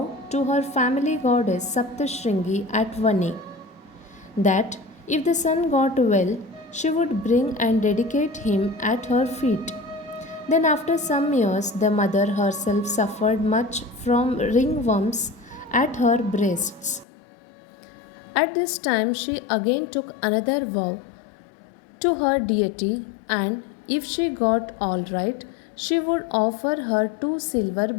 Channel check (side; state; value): right; drops out; at 17.1 s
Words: to her family goddess Saptashringi at Vani that if the son got well, she would bring and dedicate him at her feet. Then, after some years, the mother herself suffered much from ringworms at her breasts. At this time, she again took another vow to her deity, and if she got all right, she would offer her 2 silver